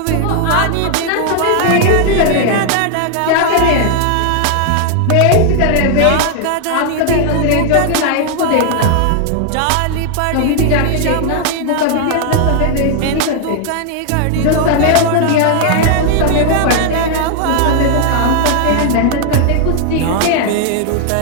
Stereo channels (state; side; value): different; both; correlation 0.00